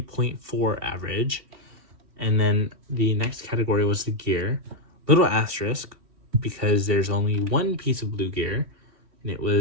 average. And then the next category was the gear. Little asterisk, because there's only 1 piece of blue gear, and it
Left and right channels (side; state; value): left; late; 3.2 ms